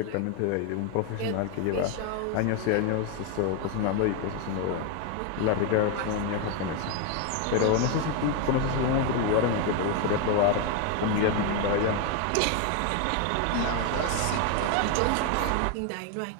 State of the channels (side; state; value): both; different; correlation 0.01